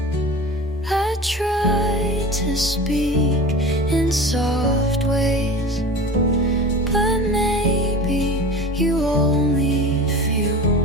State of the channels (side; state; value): both; normal; correlation 0.35